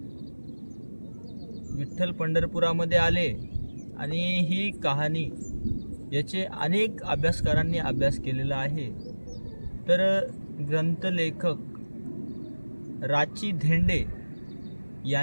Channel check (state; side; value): inverted; both; correlation -1.00